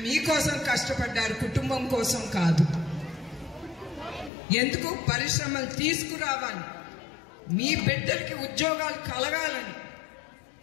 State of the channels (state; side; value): drops out; right; at 4.3 s